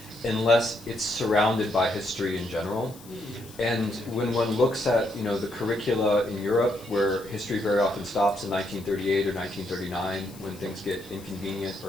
unless it's surrounded by history in general. And when one looks at, the curricula in Europe, where history very often stops in 1938 or 1939, when things get inconvenient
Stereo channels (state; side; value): noise; left; hiss, 21 dB below the sound